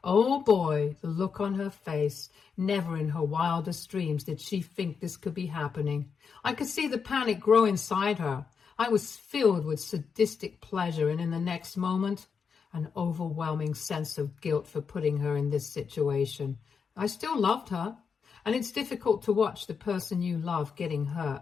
Oh boy, the look on her face. Never in her wildest dreams did she think this could be happening. I could see the panic grow inside her. I was filled with sadistic pleasure, and in the next moment, an overwhelming sense of guilt for putting her in this situation. I still loved her, and it's difficult to watch the person you love getting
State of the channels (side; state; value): right; quieter; 6.0 dB